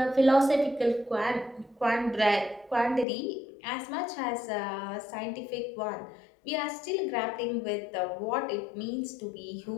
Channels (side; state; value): right; drops out; at 3.1 s